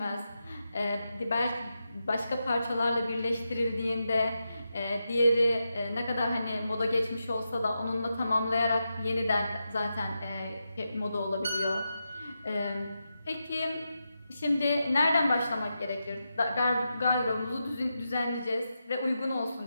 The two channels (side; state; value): both; inverted; correlation -0.88